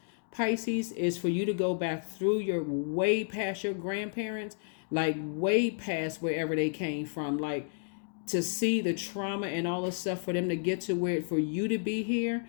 Pisces, is for you to go back through your way past your grandparents, like way past wherever they came from, like to see the trauma and all the stuff for them to get to where for you to be here.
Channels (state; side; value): silent; right; digital silence